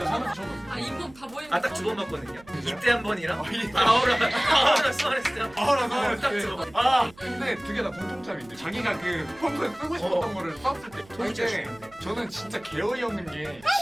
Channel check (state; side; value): noise; right; hum, 25 dB below the sound